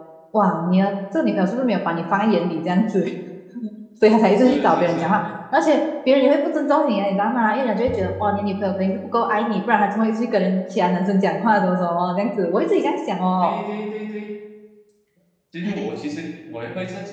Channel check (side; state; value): both; identical; correlation 1.00